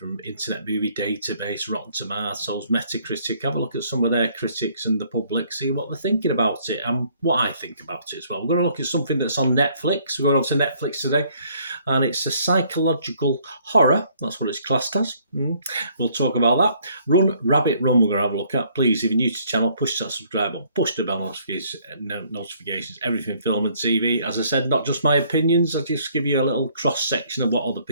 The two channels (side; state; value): both; inverted; correlation -0.63